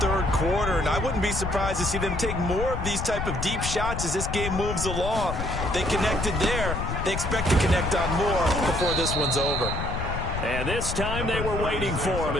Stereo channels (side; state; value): left; noise; rumble, 4 dB below the sound